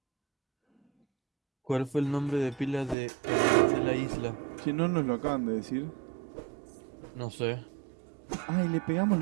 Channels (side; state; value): left; drops out; at 3.0 s